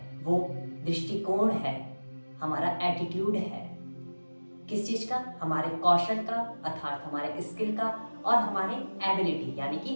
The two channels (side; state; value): both; inverted; correlation -1.00